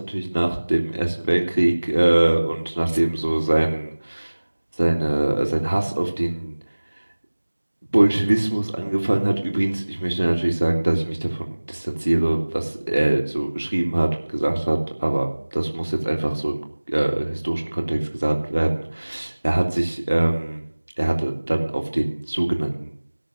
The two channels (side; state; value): both; inverted; correlation -1.00